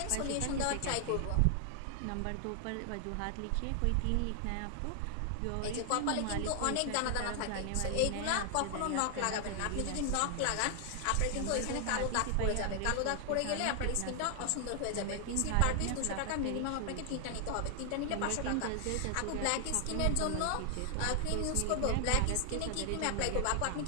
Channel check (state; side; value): different; both; correlation 0.00